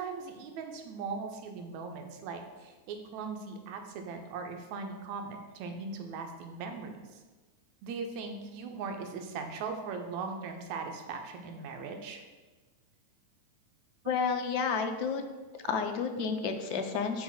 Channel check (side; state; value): left; late; 9.2 ms